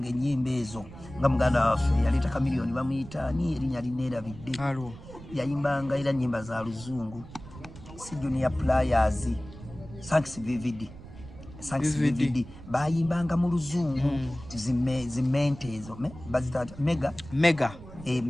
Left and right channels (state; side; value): noise; right; rumble, 16 dB below the sound